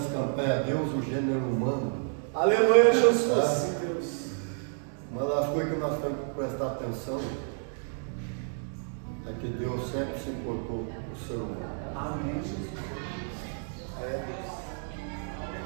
campanha é Deus, o gênero humano. Aleluia, Jesus. Sim, Deus. Uma das coisas que nós temos que prestar atenção é que Deus sempre se importou com o ser humano. Amém, Jesus. É, Deus.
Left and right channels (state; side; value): silent; left; 58 dB below the other